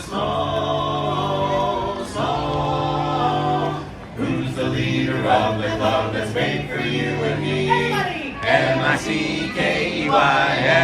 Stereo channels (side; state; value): both; identical; correlation 1.00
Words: small. Who's the leader of the club that's made for you and me?